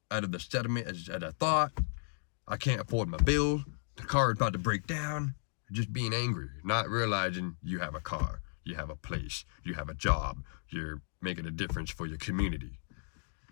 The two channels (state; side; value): silent; right; digital silence